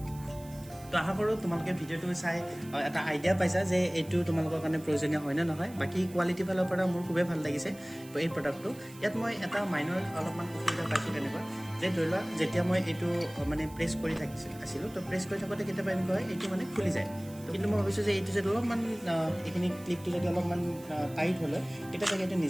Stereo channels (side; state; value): right; noise; hiss, 21 dB below the sound